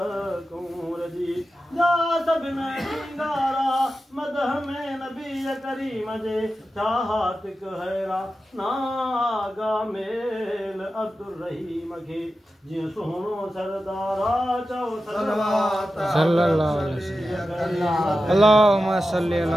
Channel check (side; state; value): both; normal; correlation 0.92